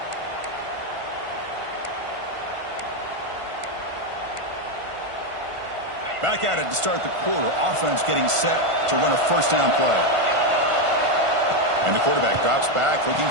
Back at it to start the quarter. Offense getting set to run a first down play. And the quarterback drops back looking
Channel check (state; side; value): late; left; 1.5 ms